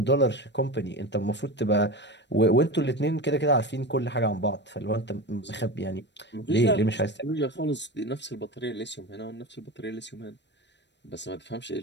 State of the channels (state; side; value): late; right; 0.51 ms